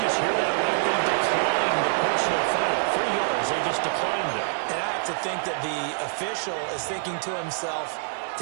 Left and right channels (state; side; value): silent; left; 61 dB below the other